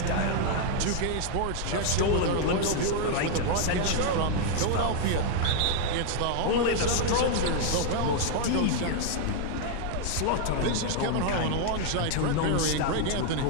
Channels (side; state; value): both; different; correlation 0.00